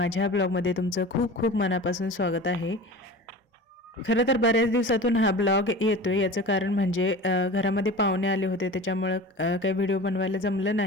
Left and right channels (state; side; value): normal; both; correlation 0.35